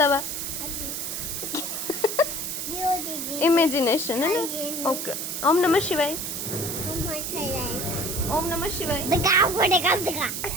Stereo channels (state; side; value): noise; right; hiss, 4 dB below the sound